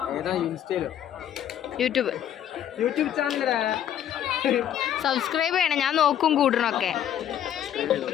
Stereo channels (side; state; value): right; quieter; 10.4 dB